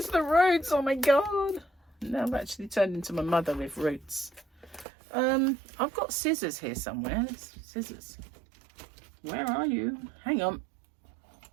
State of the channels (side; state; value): left; drops out; at 4.9 s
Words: the roots, oh my god. Now I've actually turned into my mother with roots. I've got scissors here somewhere. Scissors. Where are you? Hang on.